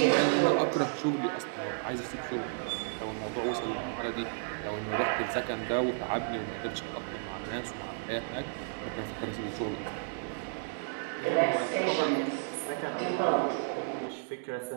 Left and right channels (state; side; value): silent; left; digital silence